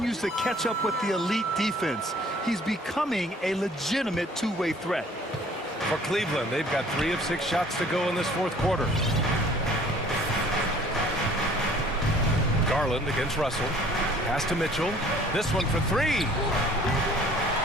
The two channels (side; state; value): both; normal; correlation 0.54